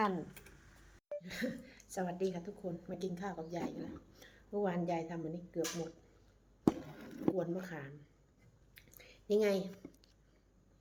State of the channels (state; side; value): identical; both; correlation 1.00